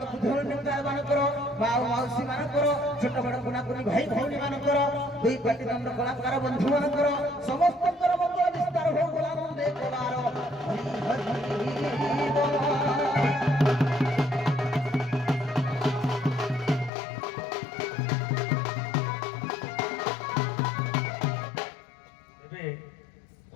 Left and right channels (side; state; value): right; drops out; at 16.9 s